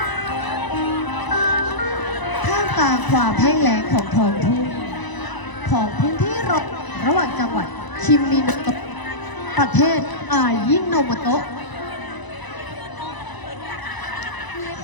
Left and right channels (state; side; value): late; right; 1.0 ms